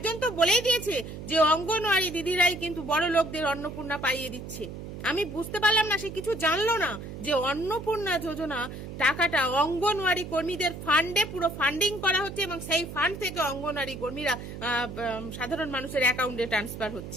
তো বলেই দিয়েছে যে অঙ্গনওয়াড়ি দিদিরাই কিন্তু বড় লোকদের অন্নপূর্ণা পাইয়ে দিচ্ছে। আমি বুঝতে পারলাম না, সে কিছু জানলো না যে অন্নপূর্ণা যোজনা টাকাটা অঙ্গনওয়াড়ি কর্মীদের ফান্ডে পুরো ফান্ডিং করা হচ্ছে এবং সেই ফান্ড থেকে অঙ্গনওয়াড়ি কর্মীরা সাধারণ মানুষের অ্যাকাউন্টে ট্রান্সফার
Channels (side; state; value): right; noise; hum, 10 dB below the sound